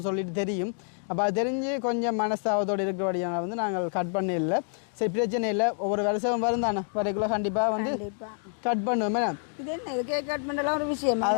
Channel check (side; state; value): right; silent; 60 dB below the other